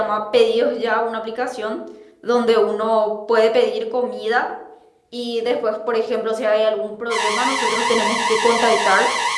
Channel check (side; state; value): both; identical; correlation 1.00